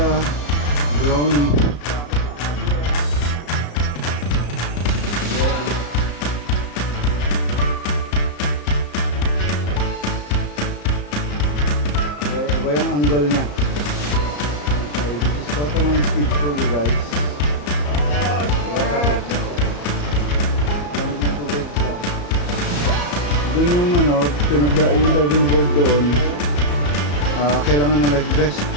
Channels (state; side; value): late; right; 34 ms